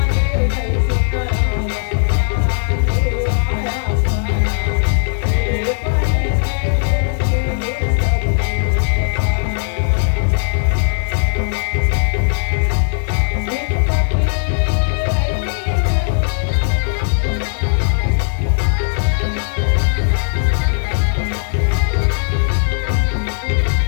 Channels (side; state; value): right; silent; digital silence